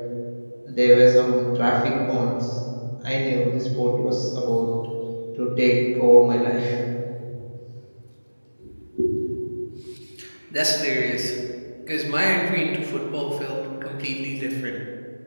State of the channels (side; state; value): both; inverted; correlation -1.00